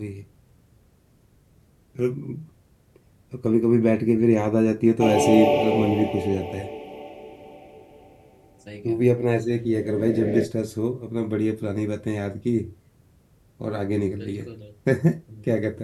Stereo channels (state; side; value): identical; both; correlation 1.00